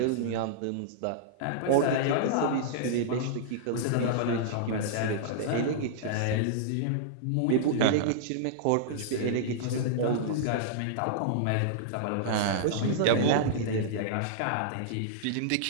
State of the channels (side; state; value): both; different; correlation -0.02